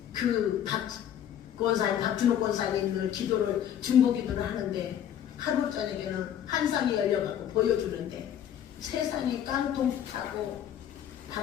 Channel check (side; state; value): right; quieter; 10.1 dB